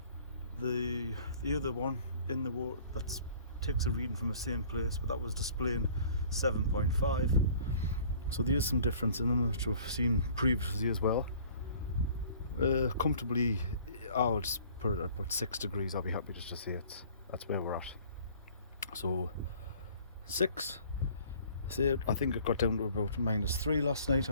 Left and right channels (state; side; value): inverted; both; correlation -0.52